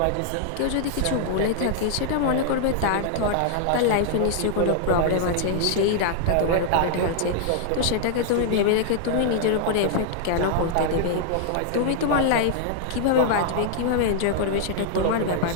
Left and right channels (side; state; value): both; different; correlation -0.01